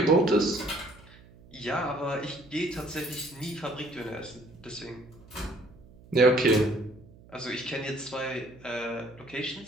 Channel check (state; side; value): noise; right; hum, 23 dB below the sound